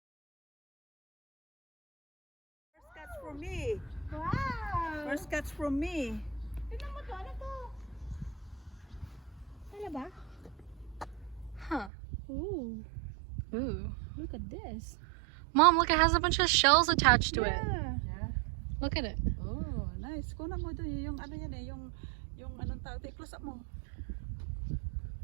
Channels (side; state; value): left; drops out; at 11.9 s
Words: First catch from me. Wow. First catch from me. Tignan mo to. Ano to? Ano ba? Huh. Ooh. Ooh. Look at this. Mom, look, it has a bunch of shells attached to it. Yeah. Look at it. Oh, nice. Kunan mo doon yung ano yan eh, yung anong tawag, close up mo.